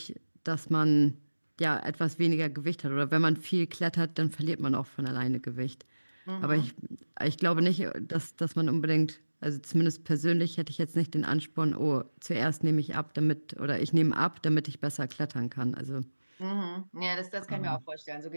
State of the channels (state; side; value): inverted; both; correlation -1.00